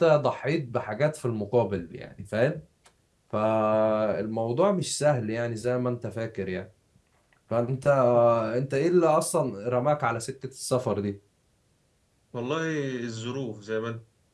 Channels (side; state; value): both; identical; correlation 1.00